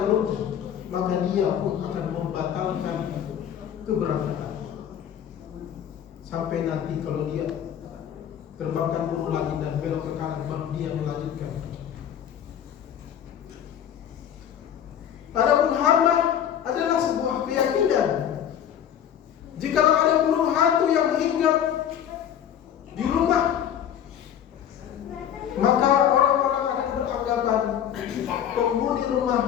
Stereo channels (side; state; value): right; quieter; 9.6 dB